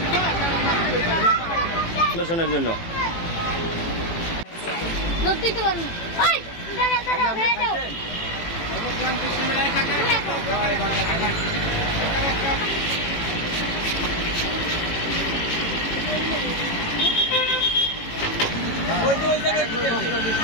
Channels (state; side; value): late; right; 18 ms